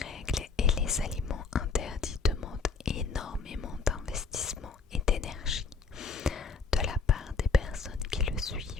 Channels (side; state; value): right; quieter; 4.8 dB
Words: et les aliments interdits demandent énormément d'investissement et d'énergie de la part des personnes qui le